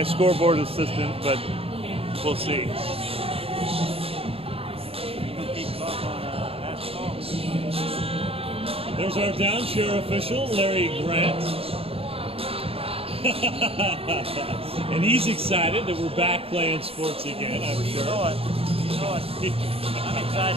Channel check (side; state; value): left; late; 0.28 ms